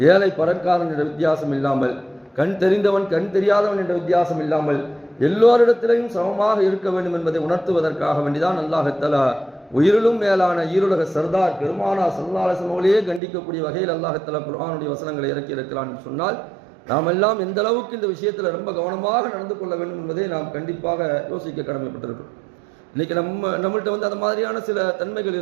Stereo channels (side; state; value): left; drops out; at 13.2 s